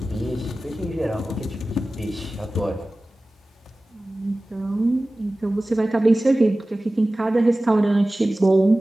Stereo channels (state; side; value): normal; both; correlation 0.97